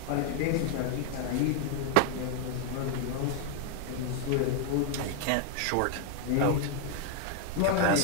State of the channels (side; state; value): both; different; correlation 0.00